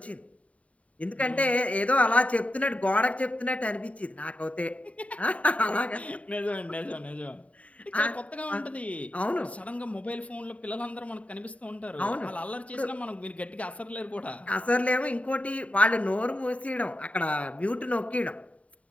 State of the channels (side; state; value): right; late; 0.067 ms